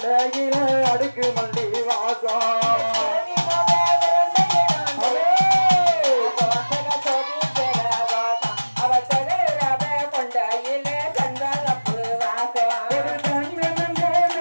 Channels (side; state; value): both; inverted; correlation -1.00